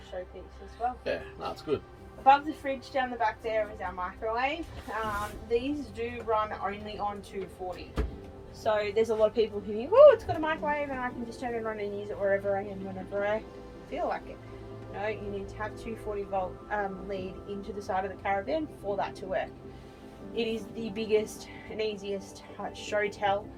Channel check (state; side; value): identical; both; correlation 1.00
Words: showpiece as well. Yeah, that's good. Above the fridge down the back there is our microwave. These do run only on 240. So there's a lot of people who think, oh, it's got a microwave and I can just turn it on and use it wherever I am, whenever I feel like it. No, you need to have 240 volt lead into the side of the caravan for that to work. It is the biggest and easiest show tell